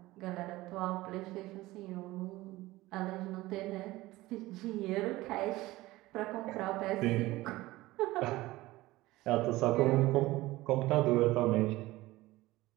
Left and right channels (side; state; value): left; quieter; 18.4 dB